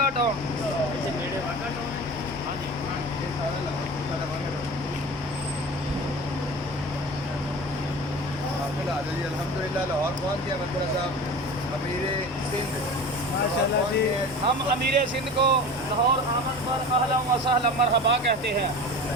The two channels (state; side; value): normal; both; correlation 0.35